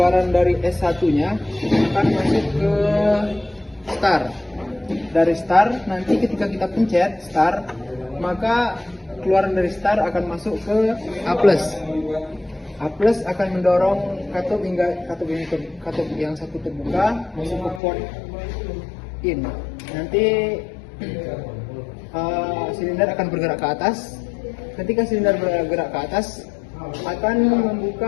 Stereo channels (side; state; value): right; drops out; at 17.8 s